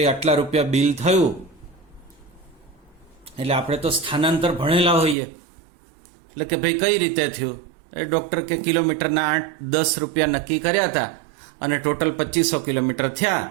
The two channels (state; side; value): drops out; left; at 5.2 s